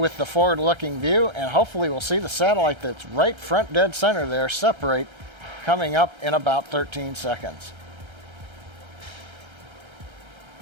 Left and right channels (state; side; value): late; left; 1.3 ms